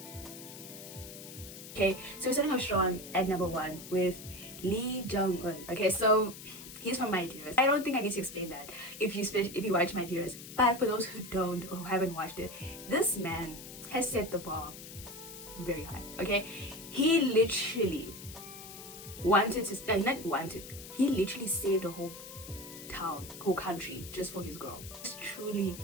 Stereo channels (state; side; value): noise; left; hiss, 13 dB below the sound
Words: Okay, so we're starting off strong at number 1 with Lee Jung-un. Okay, so he's from My Dearest. I don't think I need to explain that if you watch My Dearest, but for those who don't or who haven't watched it, this man has set the bar very high. Okay, he literally he literally saved a whole country just for his girl. Just truly